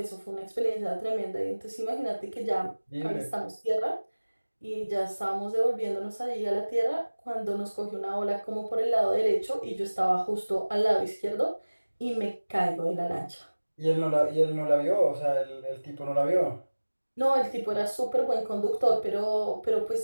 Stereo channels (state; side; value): inverted; both; correlation -1.00